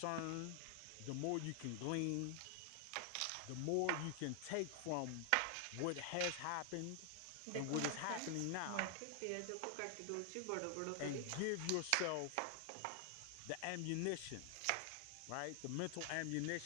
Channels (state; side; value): different; both; correlation 0.00